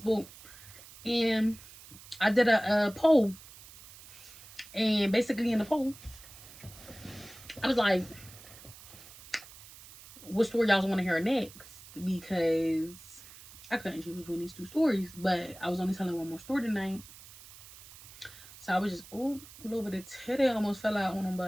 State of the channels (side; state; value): right; noise; hiss, 19 dB below the sound